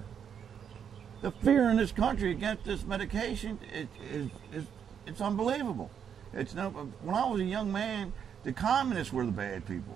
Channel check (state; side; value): quieter; left; 7.9 dB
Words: The fear in this country against this medication it's unbelievable. When I was a young man, the communists were the bad